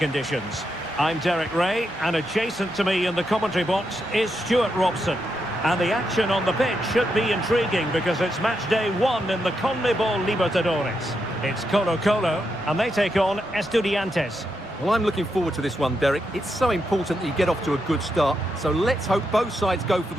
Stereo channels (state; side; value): normal; both; correlation 0.83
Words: I'm Derek Ray, and adjacent to me in the commentary box is Stuart Robson. And the action on the pitch should be intriguing because it's match day 1 in the CONMEBOL Libertadores. It's Colo-Colo, and they take on Estudiantes. Well, I'm looking forward to this one, Derek. It's so important that you get off to a good start. So let's hope both sides go for